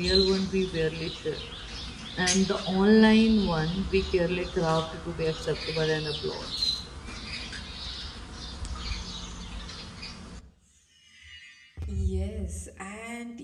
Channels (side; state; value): both; identical; correlation 1.00